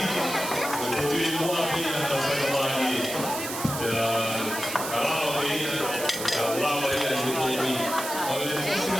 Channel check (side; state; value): right; noise; hiss, 7 dB below the sound